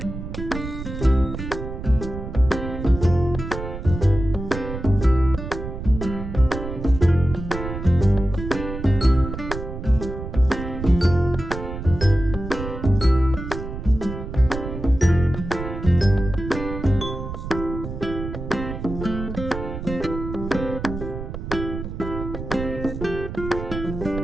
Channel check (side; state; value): right; noise; rumble, 8 dB below the sound